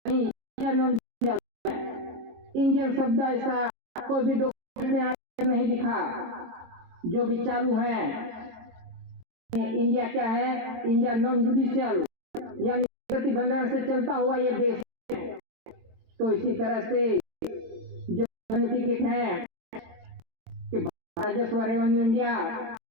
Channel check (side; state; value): left; late; 23 ms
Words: नहीं, इंडियन शब्द ऐसा कोई भी डॉक्यूमेंट में नहीं दिखा। जो भी चालू है इंडिया क्या है, इंडिया नॉन जुडिशियल यानी प्रतिबंधन से चलता हुआ ये देश है। तो इसी तरह से जो टिकट है कि राजस्व रेवेन्यू इंडिया